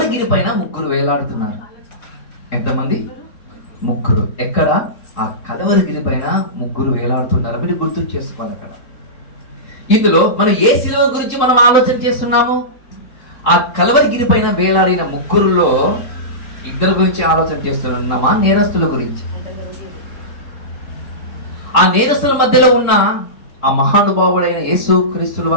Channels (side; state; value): right; late; 3.7 ms